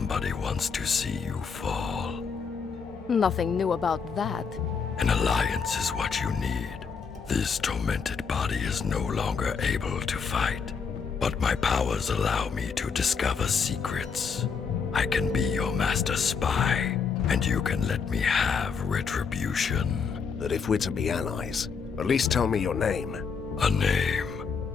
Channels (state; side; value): quieter; right; 5.8 dB